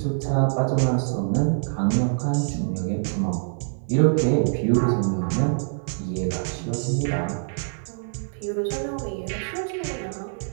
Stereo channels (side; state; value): left; silent; digital silence